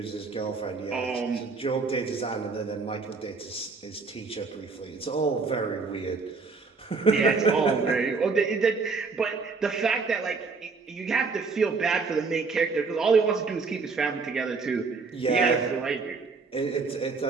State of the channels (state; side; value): quieter; left; 4.5 dB